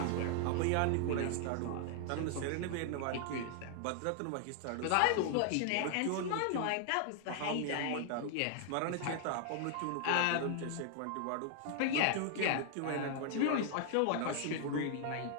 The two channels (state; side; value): different; both; correlation 0.00